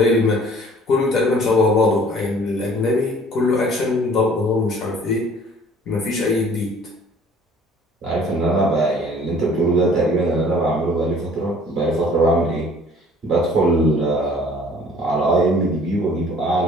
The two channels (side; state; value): both; normal; correlation 0.53